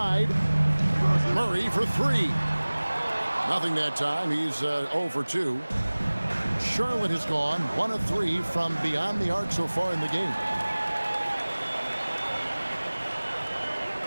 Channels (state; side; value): inverted; both; correlation -1.00